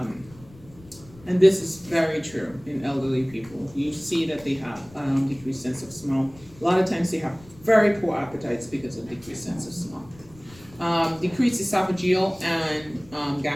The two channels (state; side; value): noise; left; rumble, 23 dB below the sound